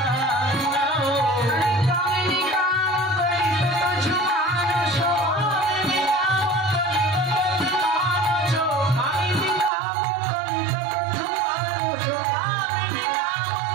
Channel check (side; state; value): left; drops out; at 9.7 s